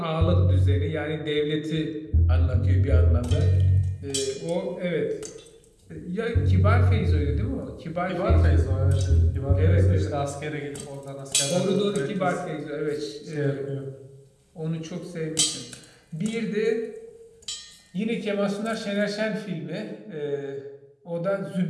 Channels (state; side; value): identical; both; correlation 1.00